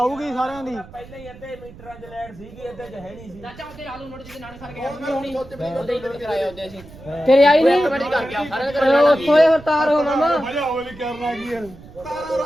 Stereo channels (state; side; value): noise; right; rumble, 19 dB below the sound